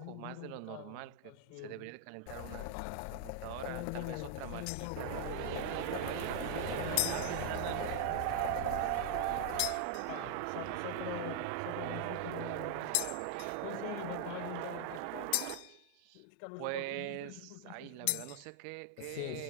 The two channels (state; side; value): different; both; correlation -0.01